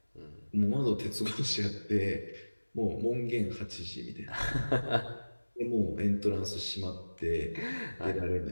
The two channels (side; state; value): both; inverted; correlation -1.00